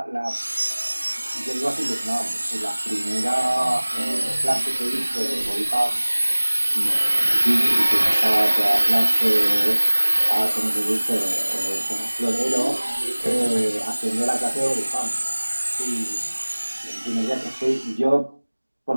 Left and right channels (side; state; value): both; inverted; correlation -1.00